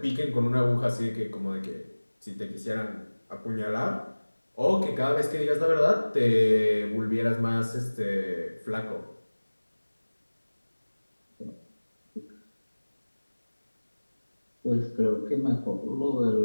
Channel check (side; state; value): both; inverted; correlation -1.00